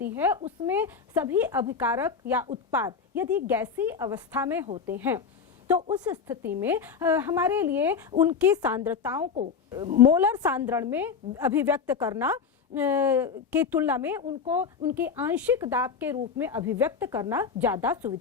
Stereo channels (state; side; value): quieter; right; 6.0 dB